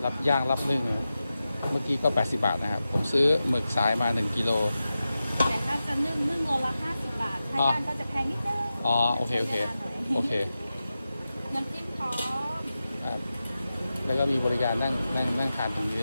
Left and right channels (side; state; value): both; inverted; correlation -0.93